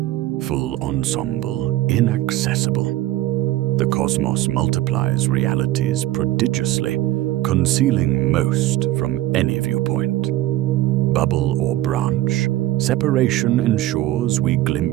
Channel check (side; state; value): left; quieter; 15.2 dB